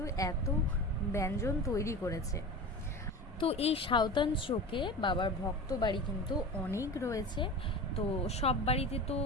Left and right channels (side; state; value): both; normal; correlation 0.32